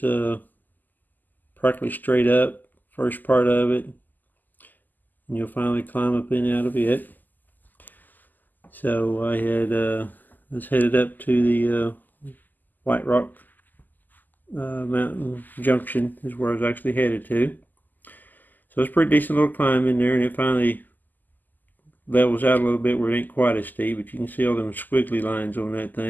practically straight up, first part of it. And you'll finally climb up and out of it. So I was headed up to the White Rock Mountain Junction is where I was actually headed to. So it's a pretty decent little climb in there, and it finally levels out a little bit where it ain't quite as steep, but you can see all them squiggly lines on that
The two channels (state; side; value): late; right; 0.086 ms